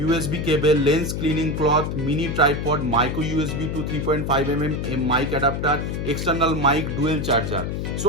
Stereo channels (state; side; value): noise; left; hum, 3 dB below the sound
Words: USB cable, lens cleaning cloth, mini tripod, micro USB to 3.5 mm mic adapter, external mic, dual charger. So